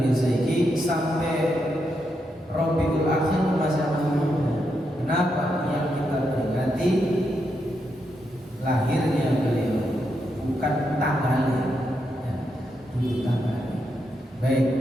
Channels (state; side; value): normal; both; correlation 0.82